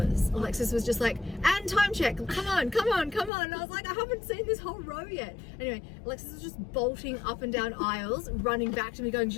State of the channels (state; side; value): drops out; right; at 3.3 s